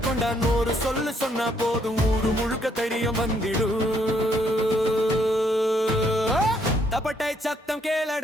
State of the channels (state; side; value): normal; both; correlation 0.70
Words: ஒரு சொல்லு சொன்னா போதும் ஊரு முழுக்க தைரியம் வந்திடு. தப்பட்டை சத்தம்